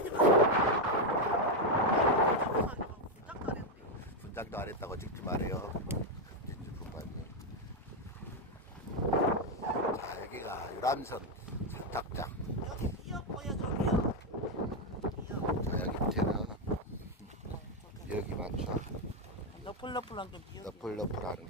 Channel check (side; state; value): both; normal; correlation 0.04